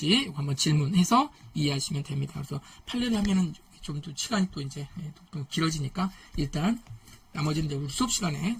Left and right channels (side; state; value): both; identical; correlation 1.00